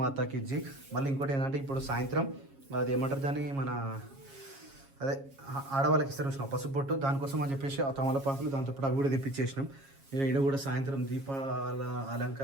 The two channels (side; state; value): left; late; 7.3 ms